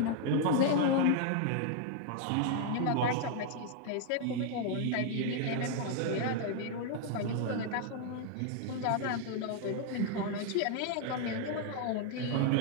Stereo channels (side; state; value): both; different; correlation 0.00